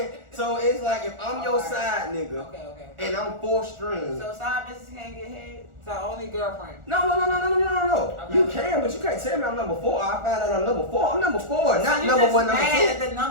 So it's like if I'm your side nigga, okay. and I'm 4th string. So side bitches can't get head. So only girlfriend. No. Okay. You can, but you can't tell me I'm number 4. I find out I'm number 4. I'm number 4, not number 1, number 2. At the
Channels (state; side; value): late; left; 1.4 ms